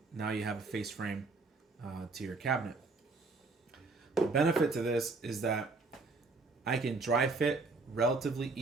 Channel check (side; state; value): left; quieter; 3.8 dB